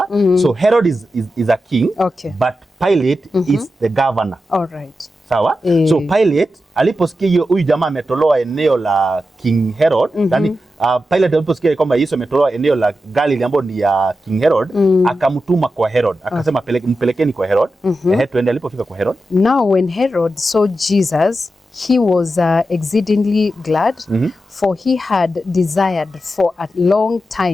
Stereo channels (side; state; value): both; normal; correlation 0.90